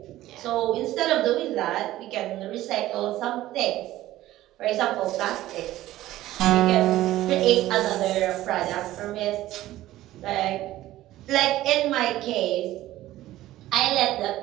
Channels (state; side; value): quieter; left; 15.2 dB